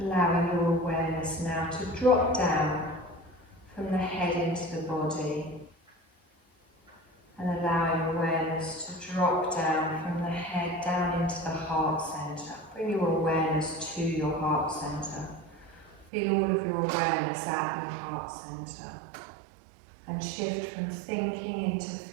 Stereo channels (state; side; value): drops out; left; at 16.1 s